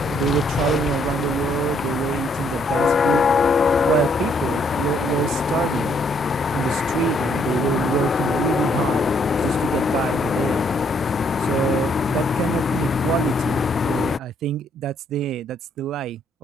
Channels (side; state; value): both; normal; correlation 0.69